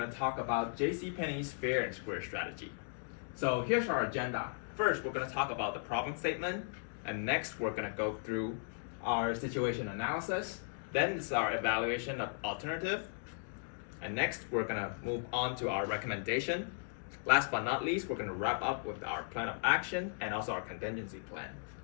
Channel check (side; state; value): right; silent; digital silence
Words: to talk about JCPenney's fair and square strategy. So here's our agenda. First, we're going to talk about the problem statement, and next we're going to go through our situation analysis. Then it's our evaluation of alternative, and next we're going to move on to our recommendation. Last but not least, we're going to wrap up with our plan of action and also our contingency plan.